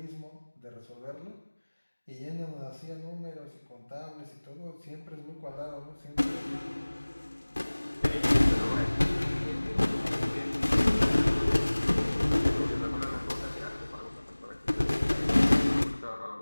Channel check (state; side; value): inverted; both; correlation -1.00